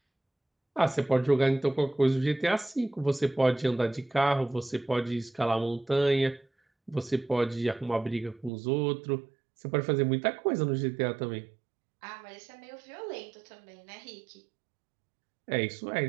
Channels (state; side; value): drops out; left; at 8.5 s